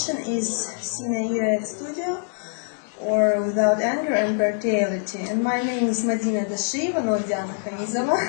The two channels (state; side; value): silent; right; 62 dB below the other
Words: is Sine ira et studio, or Without Anger and Brutality. And my name is Madina Dashieva, not Diana Hamizova,